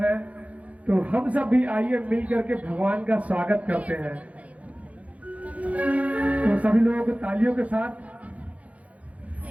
हैं। तो हम सब भी आइए मिल करके भगवान का स्वागत करते हैं। तो सभी लोग तालियों के साथ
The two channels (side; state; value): left; late; 0.067 ms